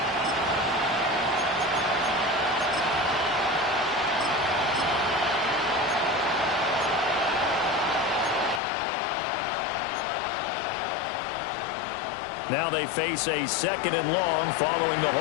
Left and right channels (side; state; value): right; drops out; at 8.6 s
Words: Now they face a 2nd and long following the